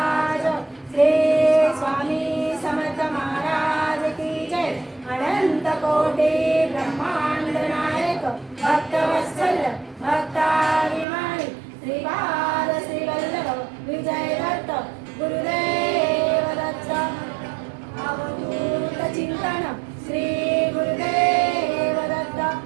श्री स्वामी समर्थ महाराज की जय अनंत कोटि ब्रह्मांड नायक भक्तवत्सल भक्ताभिमानी श्रीपाद श्रीवल्लभ विजय दत्त गुरुदेव दत्त अवधूत चिंतन श्री गुरुदेव दत्त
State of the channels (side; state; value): left; drops out; at 11.1 s